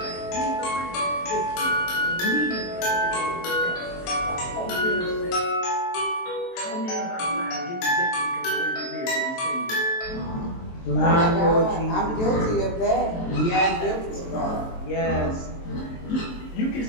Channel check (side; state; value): right; late; 23 ms